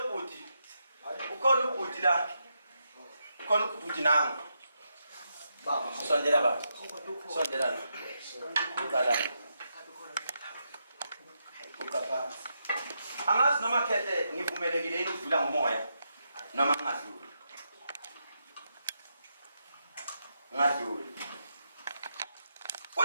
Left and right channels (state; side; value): inverted; both; correlation -0.83